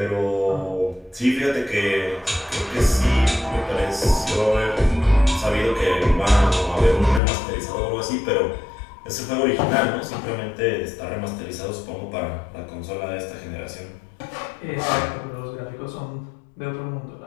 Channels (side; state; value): right; drops out; at 7.2 s